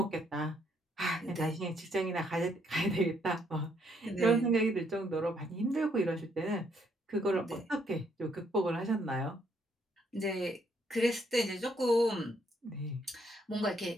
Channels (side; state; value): both; normal; correlation 0.71